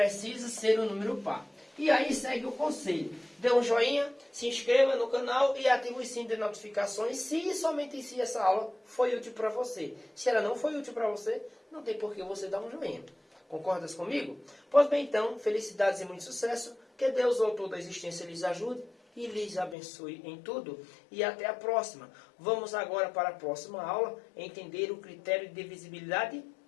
ser um número par. E aí segue o conselho. Dê um joinha, se inscreva no canal e ative o sininho de notificações se somente se essa aula foi útil para você. Se ela não foi útil para você, não tem por que você dar um joinha. Concordas comigo? Pois bem, então, felicidades e muito sucesso. Que Deus, o autor da existência, lhes ajude e lhes abençoe em tudo. E até a próxima. Vamos agora para a próxima aula entender o critério de divisibilidade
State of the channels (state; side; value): drops out; right; at 19.8 s